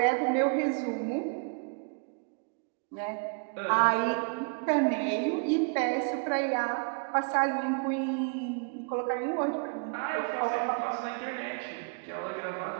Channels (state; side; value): quieter; left; 37.3 dB